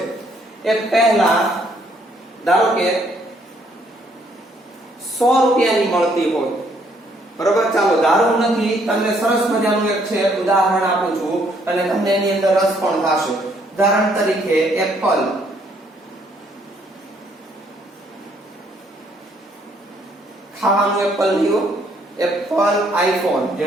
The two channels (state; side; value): normal; both; correlation 0.67